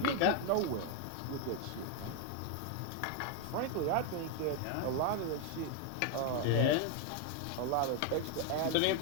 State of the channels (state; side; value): different; both; correlation 0.01